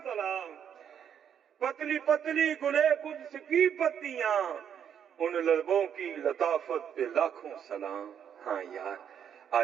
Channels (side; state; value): left; quieter; 8.6 dB